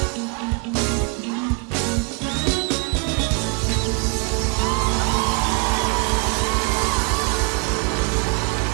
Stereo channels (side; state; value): left; quieter; 33.8 dB